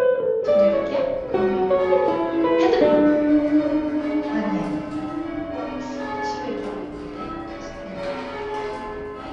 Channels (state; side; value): identical; both; correlation 1.00